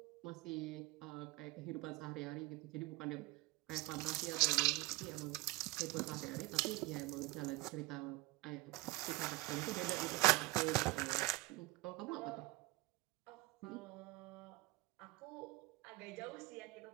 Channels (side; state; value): left; quieter; 20.8 dB